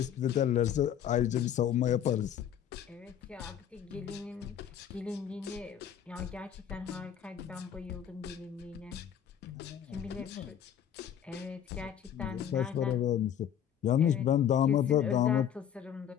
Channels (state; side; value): quieter; right; 9.4 dB